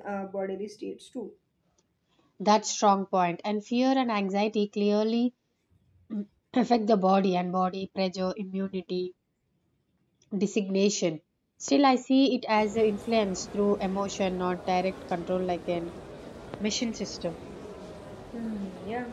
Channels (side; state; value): both; identical; correlation 1.00